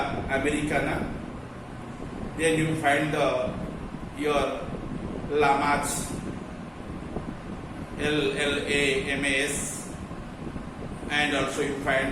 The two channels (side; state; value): both; identical; correlation 1.00